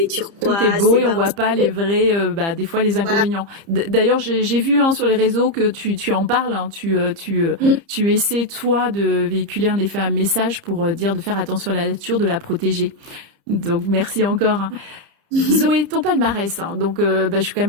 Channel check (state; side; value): late; left; 30 ms